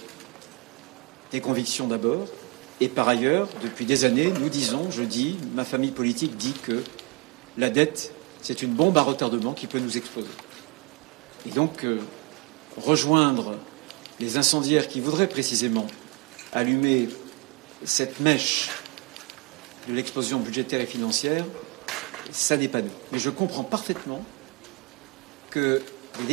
des convictions d'abord. Et par ailleurs, depuis des années, je dis, ma famille politique dit que la dette, c'est une bombe à retardement qui peut nous exploser. Et donc, rejoindre les incendiaires qui voudraient précisément allumer cette mèche de l'explosion budgétaire et financière, ça n'est pas nous. Et je comprends parfaitement que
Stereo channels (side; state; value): left; quieter; 28.7 dB